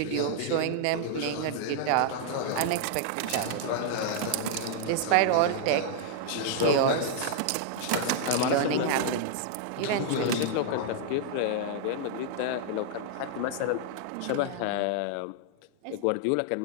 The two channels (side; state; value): both; different; correlation -0.01